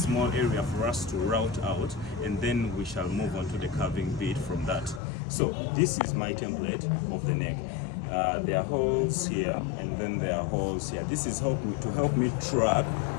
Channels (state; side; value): drops out; right; at 5.0 s